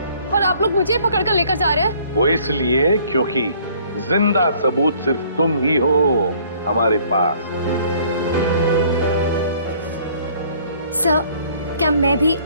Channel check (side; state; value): both; inverted; correlation -0.58